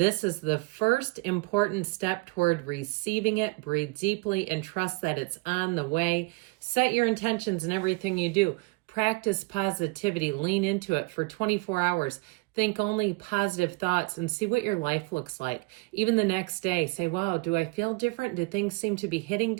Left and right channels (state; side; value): quieter; left; 26.3 dB